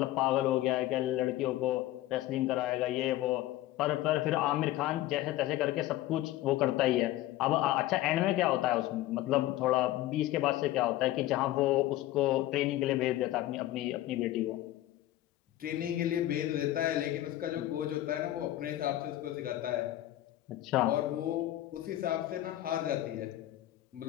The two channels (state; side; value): quieter; right; 15.1 dB